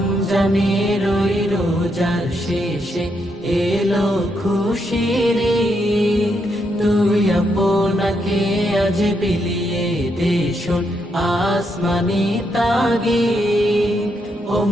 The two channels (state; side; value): normal; both; correlation 0.79